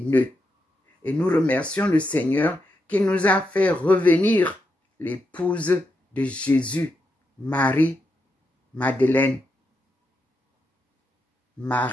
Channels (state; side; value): normal; both; correlation 0.84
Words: Et nous remercions le Seigneur qui nous a fait revenir l'épouse de Jésus, Marie-Madeleine,